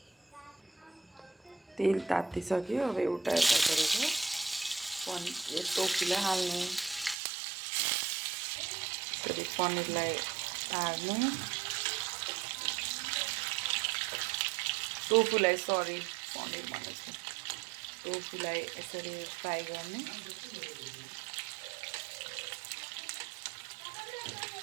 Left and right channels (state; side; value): drops out; left; at 7.2 s